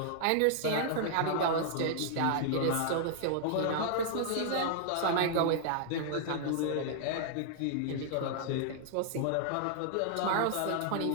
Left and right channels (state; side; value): different; both; correlation -0.01